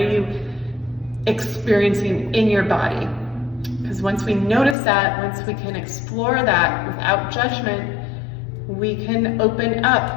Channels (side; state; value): right; drops out; at 4.8 s